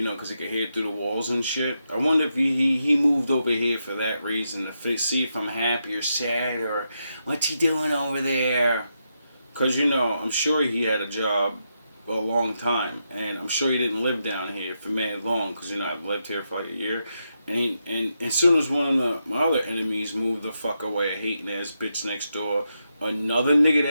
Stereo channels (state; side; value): inverted; both; correlation -0.84